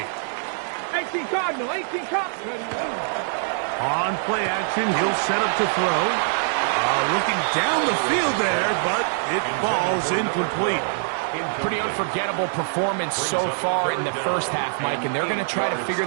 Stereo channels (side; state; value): left; silent; digital silence